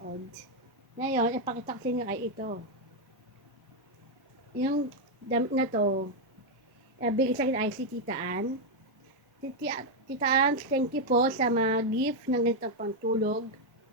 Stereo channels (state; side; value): normal; both; correlation 0.01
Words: Ngayon, ipakita ko sa inyo ay ito. Yung damit na to, bigay sa akin ay si Tita Ann. Tita Ann, thank you po sa mga gift ng ganitong pantulog.